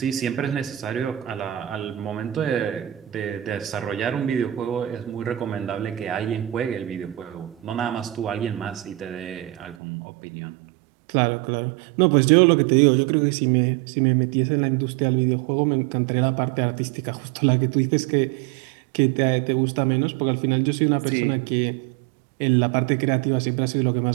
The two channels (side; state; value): left; drops out; at 9.8 s